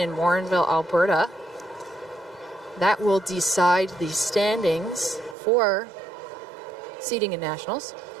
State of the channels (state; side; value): drops out; left; at 5.4 s